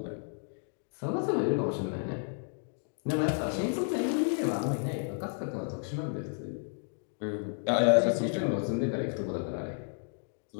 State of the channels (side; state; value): right; silent; 56 dB below the other